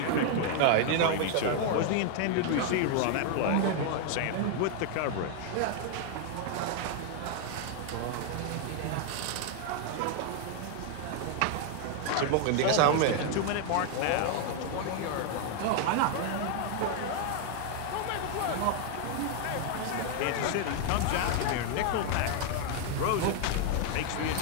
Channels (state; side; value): different; both; correlation 0.00